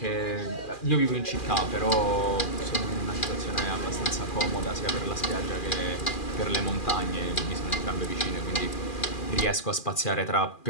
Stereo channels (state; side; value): late; right; 2.4 ms